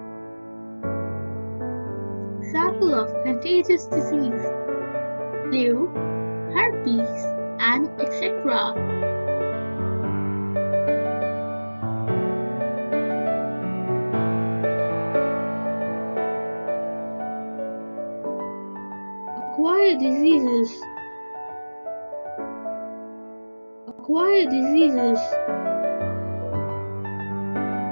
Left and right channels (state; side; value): inverted; both; correlation -1.00